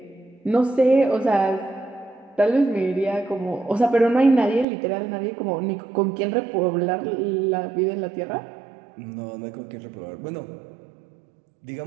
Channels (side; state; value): left; drops out; at 4.7 s